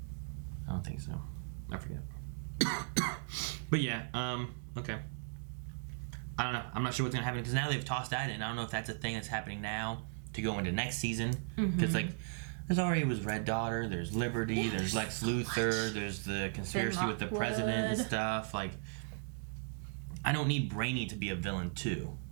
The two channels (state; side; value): silent; left; digital silence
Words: I don't think so. I forget. But yeah, okay. I don't know. I'm not sure what's gonna happen because now they've tossed that in. I don't know if that's a thing that's happening now to go into next season. Because there's already was Red Daughter, there's Liberty, there's Lex Luthor, there's the conspiracy with the president and stuff. Like, I don't need Brainy to be a villain too,